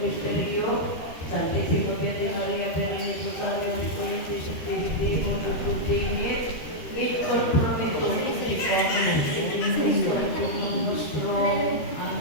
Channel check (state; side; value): late; right; 13 ms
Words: Misterio, Santissimo Piede Maria per il Rosario di Corinti, Santissimo Continet, il compromesso tutti con il nostro